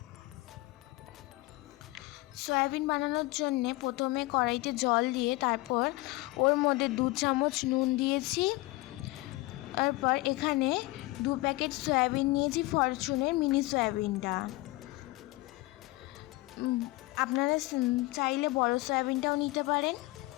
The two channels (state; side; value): quieter; right; 21.3 dB